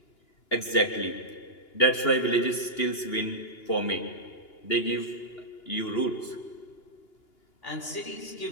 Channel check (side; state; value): right; late; 2.8 ms